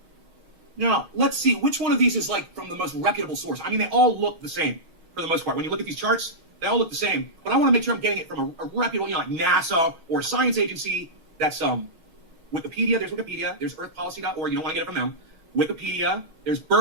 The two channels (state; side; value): late; left; 6.4 ms